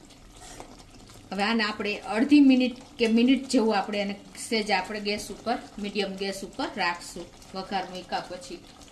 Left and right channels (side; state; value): both; identical; correlation 1.00